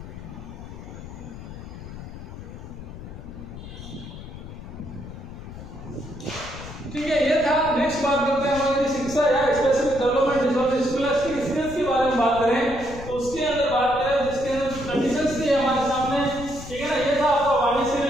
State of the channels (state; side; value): noise; left; rumble, 12 dB below the sound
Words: ठीक है, ये था। नेक्स्ट बात करते हैं हमारी शिक्षा या specific development disorder scholastic skills के बारे में बात करें तो उसके अंदर बात करें जिसके अंदर कंडीशंस थी हमारे सामने, ठीक है ना। ये था आपका वाणी से